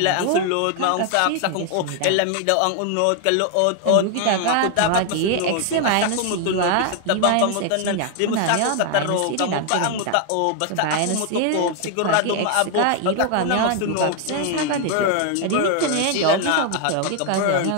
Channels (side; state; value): both; different; correlation 0.00